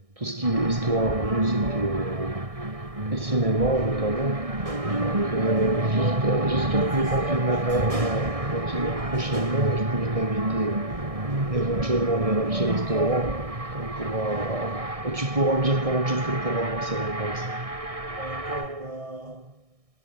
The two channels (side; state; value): left; late; 1.6 ms